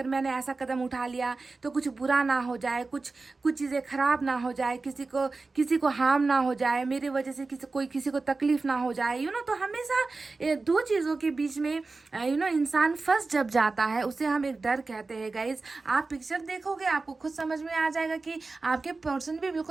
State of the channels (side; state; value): left; quieter; 3.8 dB